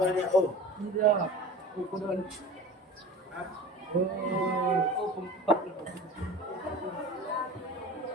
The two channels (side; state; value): both; normal; correlation 0.38